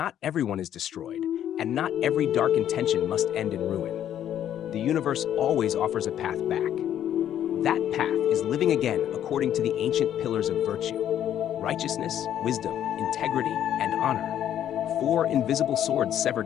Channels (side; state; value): right; quieter; 10.6 dB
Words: everyone is destroyed, and not every dark intention must end in ruin. The universe always offers a path back. That path is living again according to the ancient pillars of virtue: righteousness, wisdom, integrity, and honor. 4 invisible swords sever